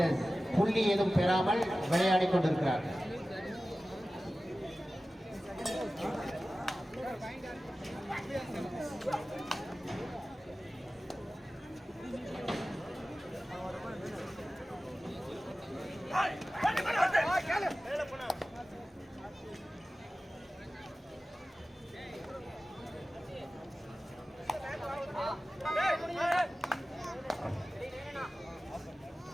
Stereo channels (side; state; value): both; normal; correlation 0.96